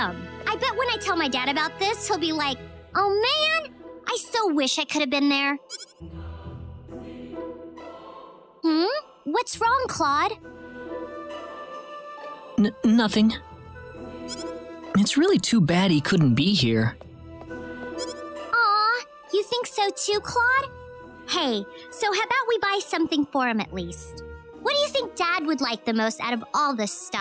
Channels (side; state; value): both; identical; correlation 1.00